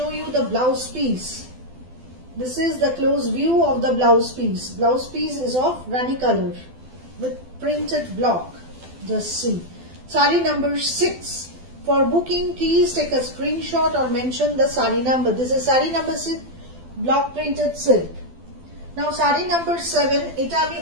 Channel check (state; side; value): late; left; 12 ms